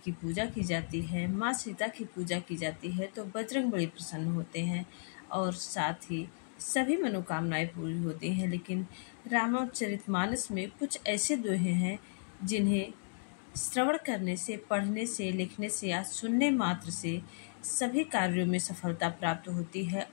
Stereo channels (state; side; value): silent; right; digital silence